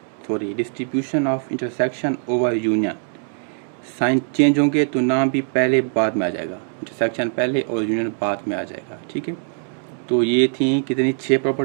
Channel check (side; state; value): left; silent; 59 dB below the other